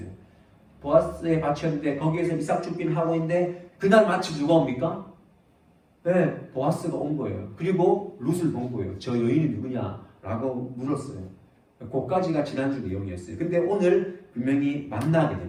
보아스의 밭이었는데 거기에서 이삭 줍기를 하고 있는데 그날 마침 누가 옵니까? 네, 보아스가 온 거예요. 그리고 룻을 본 거예요. 저 여인이 누구냐? 라고 물었어요. 그까지가 지난주 내용이었어요. 근데 오늘 분명히 만나게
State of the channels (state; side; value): identical; both; correlation 1.00